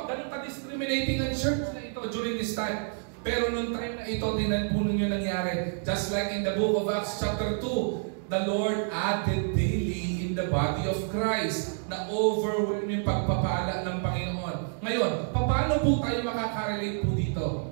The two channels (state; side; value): silent; left; digital silence